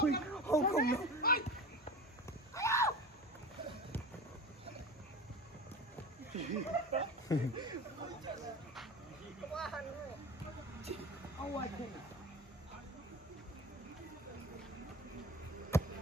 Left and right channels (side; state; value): both; normal; correlation 0.32